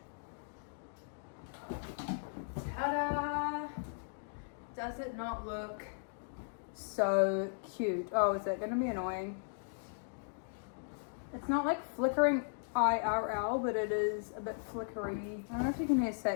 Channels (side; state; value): right; silent; digital silence